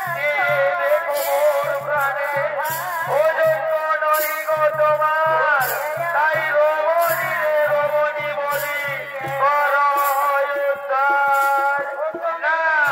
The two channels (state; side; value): identical; both; correlation 1.00